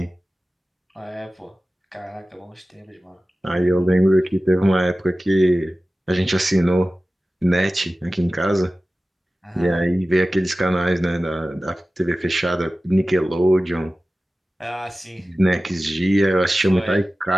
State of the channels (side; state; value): both; normal; correlation 0.96